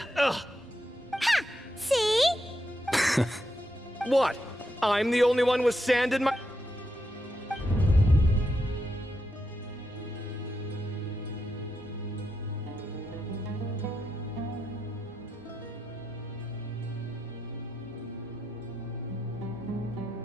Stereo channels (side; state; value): both; normal; correlation 0.84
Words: Ha! See? What? I'm the only one with sand in my...